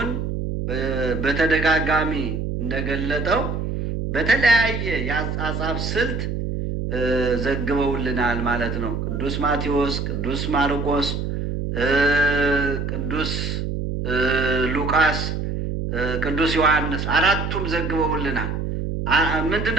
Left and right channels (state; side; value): noise; right; hum, 3 dB below the sound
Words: በተደጋጋሚ እንደገለጠው በተለያየ የአጻጻፍ ስልት ዘግበውልናል ማለት ነው። ቅዱስ ማቴዎስ፣ ቅዱስ ማርቆስ፣ ቅዱስ ሉቃስ፣ ቅዱስ ዮሐንስ አራቱም ዘግበውልናል። ምንድን